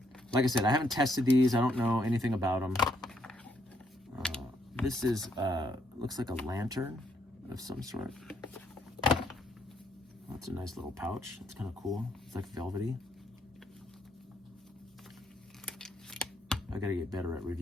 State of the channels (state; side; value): normal; both; correlation 0.73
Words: Like I said, I haven't tested these. I don't know anything about them. This is, looks like a lantern of some sort. That's a nice little pouch. It's kind of cool. It's like velvety. I gotta get better at